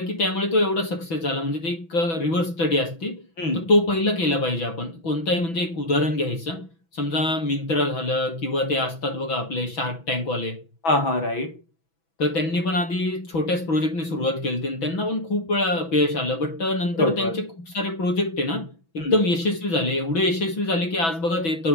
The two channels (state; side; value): late; right; 6.1 ms